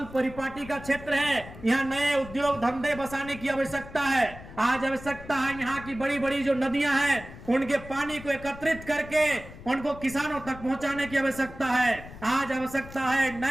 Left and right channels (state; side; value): noise; left; rumble, 15 dB below the sound